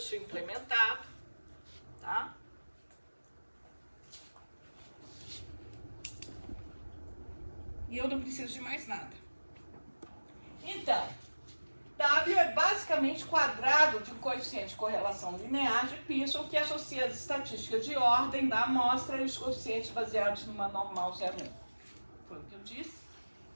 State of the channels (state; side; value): inverted; both; correlation -1.00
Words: implementado, tá? E eu não preciso de mais nada. Então, W é basicamente quadrado de um coeficiente de correlação linear de Pearson que associa as estatísticas de ordem da amostra e os coeficientes baseados numa normal 0,1. Foi o que eu disse.